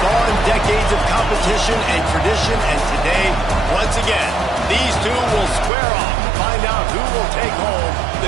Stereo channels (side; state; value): left; drops out; at 5.7 s